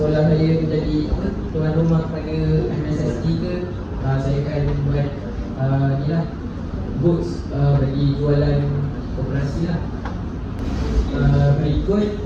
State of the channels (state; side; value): identical; both; correlation 1.00